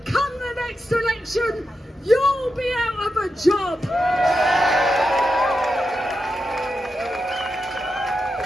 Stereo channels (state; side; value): normal; both; correlation 0.88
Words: come the next election, you'll be out of a job.